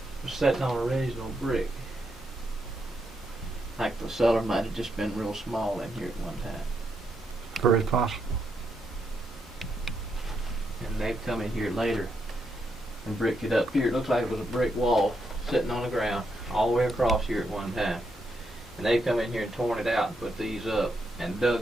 was sitting on original brick. Like the cellar might have just been real small in here at one time. Very possible. And they've come in here later and bricked it up here. It looks like it was a brick wall sitting on the ground all the way across here at one time. And they've come in here and torn it out and put these up and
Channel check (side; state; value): both; normal; correlation 0.80